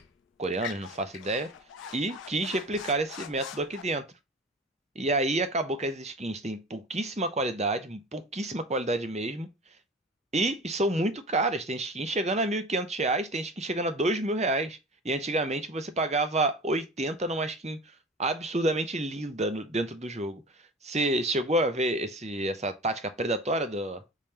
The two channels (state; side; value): normal; both; correlation 0.36